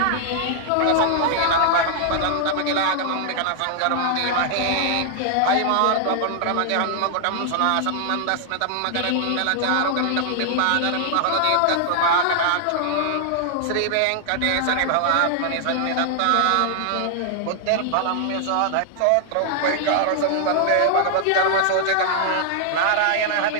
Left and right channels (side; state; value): both; different; correlation 0.00